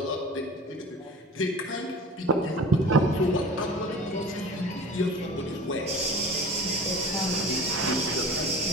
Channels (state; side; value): normal; both; correlation 0.40